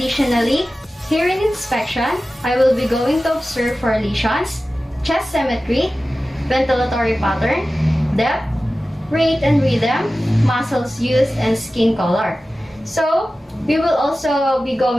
here in inspection, I will be going to observe for lesions, chest symmetry, ventilatory pattern, depth, rate and rhythm, muscles used, and skin color. So, we will also be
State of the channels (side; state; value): both; normal; correlation 0.95